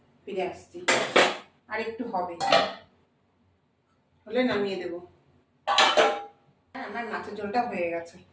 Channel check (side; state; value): both; identical; correlation 1.00